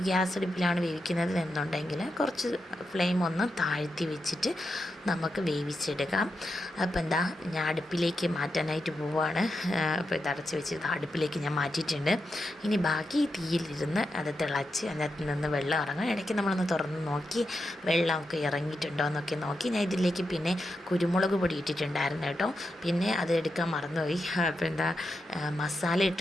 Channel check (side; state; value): both; normal; correlation 0.87